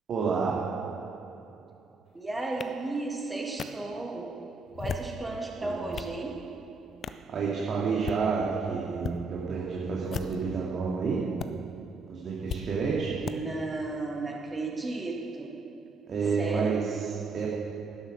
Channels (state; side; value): quieter; left; 3.7 dB